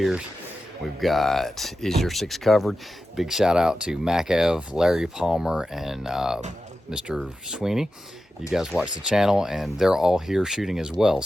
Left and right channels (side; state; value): both; normal; correlation 0.92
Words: We've got Is Your Six Covered? Big shout out to Mac Ev, Larry Palmer, and Mr. Sweeney. You guys watch the channel, and they're all here shooting as well.